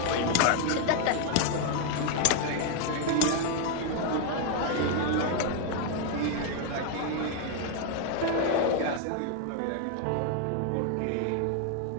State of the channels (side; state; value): both; different; correlation 0.00